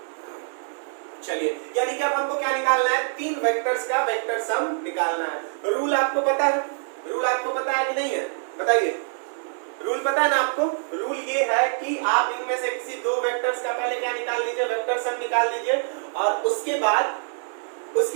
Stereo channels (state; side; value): silent; left; digital silence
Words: चलिए, यानी कि अब हमको क्या निकालना है, तीन वेक्टर्स का वेक्टर सम निकालना है। रूल आपको पता है? रूल आपको पता है कि नहीं है, बताइए। रूल पता है ना आपको? रूल ये है कि आप इनमें से किसी दो वेक्टर्स का पहले क्या निकाल लीजिए, वेक्टर सम निकाल दीजिए और उसके बाद